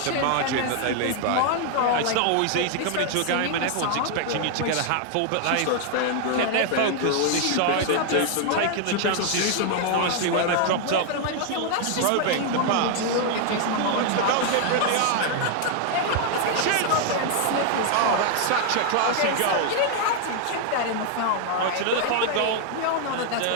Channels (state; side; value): different; both; correlation 0.00